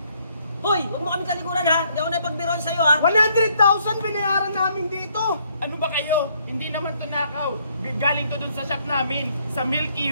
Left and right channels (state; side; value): inverted; both; correlation -0.69